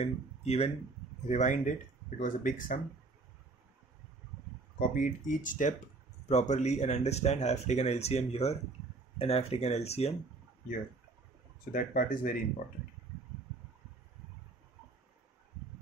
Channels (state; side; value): quieter; left; 3.7 dB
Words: even rewind it. It was a big sum. Copy it each step properly and understand. I have taken LCM here and I have taken LCM here. So that part is very important.